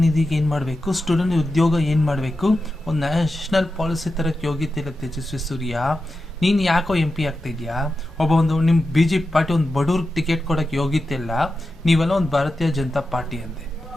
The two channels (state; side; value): normal; both; correlation 0.91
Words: ನಿಧಿಗೆ ಏನು ಮಾಡಬೇಕು, ಸ್ಟೂಡೆಂಟ್ ಉದ್ಯೋಗ ಏನು ಮಾಡಬೇಕು, ಒಂದು ನ್ಯಾಷನಲ್ ಪಾಲಿಸಿ ತರಕ್ಕೆ ಯೋಗ್ಯತೆ ಇಲ್ಲ ತೇಜಸ್ವಿ ಸೂರ್ಯ. ನೀನು ಯಾಕೋ MP ಆಗ್ತಾ ಇದೆಯಾ? ನಿಮ್ಮ BJP ಪಾರ್ಟಿ ಒಂದು ಬಡವ್ರಿಗೆ ಟಿಕೆಟ್ ಕೊಡೋಕ್ಕೆ ಯೋಗ್ಯತೆ ಇಲ್ಲ, ನೀವೆಲ್ಲ ಒಂದು ಭಾರತೀಯ ಜನತಾ ಪಾರ್ಟಿ ಅಂತೆ.